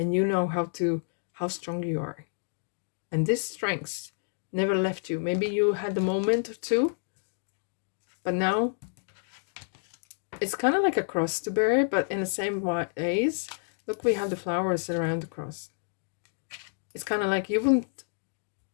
you know how strong you are. And this strength never left you. Maybe you had a moment or two, but now it's kind of like a cross to bear, but in the same ways. Look, we have the flowers around the cross. It's kind of like you wouldn't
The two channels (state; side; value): silent; right; digital silence